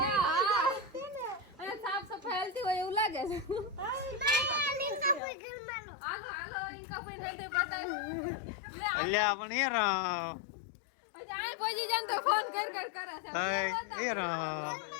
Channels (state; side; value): drops out; right; at 5.2 s